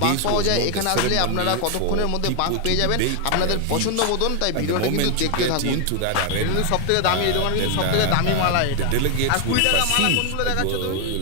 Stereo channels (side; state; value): both; different; correlation 0.01